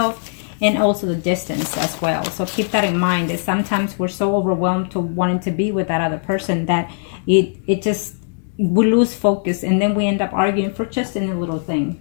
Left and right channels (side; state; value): right; silent; digital silence